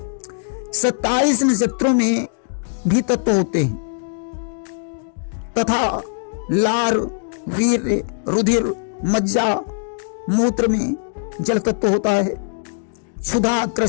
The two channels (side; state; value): right; silent; digital silence